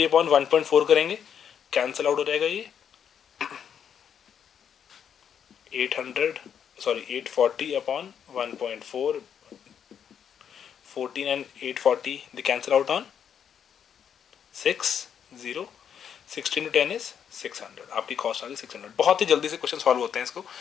अपॉन 1.4 करेंगे, कैंसिल आउट हो जाएगा ये 840 upon 1.4, 14 and 840 the cancel out on 6, 0, 16 to 10 is 600। आपकी कॉस्ट आ गई 600। बहुत ही जल्दी से क्वेश्चन सॉल्व होते हैं इसको,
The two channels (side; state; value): right; quieter; 8.2 dB